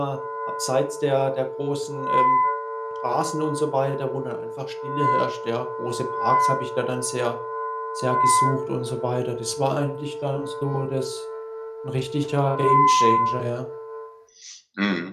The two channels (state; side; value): identical; both; correlation 1.00